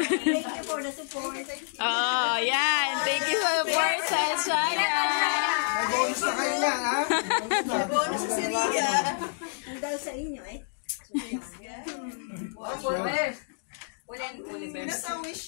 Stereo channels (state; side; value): silent; right; digital silence